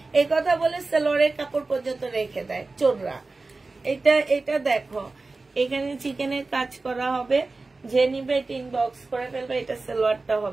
এই কথা বলে সালোয়ারের কাপড় পর্যন্ত রেখে দেয় চোররা। এটা দেখো, এখানে চিকেনের কাজ করা হবে, যে নিবে এটা ইনবক্স করে ফেলবে, এটা সালোয়ারটা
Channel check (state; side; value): quieter; left; 3.6 dB